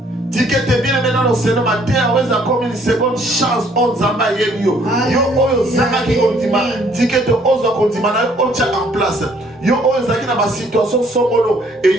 dit que tu es bien aimé dans le Seigneur, ma terre, ouais, ça comme une seconde chance, on zamba yo. Yo, oyo, zanga qui continue, dit que tu oses continuer, on tient en place. Yo, oyo, zaki na ma situation songolo,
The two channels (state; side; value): normal; both; correlation 0.62